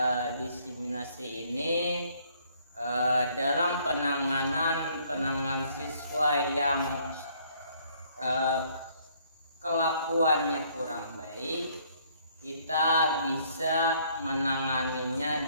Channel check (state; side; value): inverted; both; correlation -0.64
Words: diseminasi ini, dalam penanganan siswa yang kelakuannya kurang baik, kita bisa menanganinya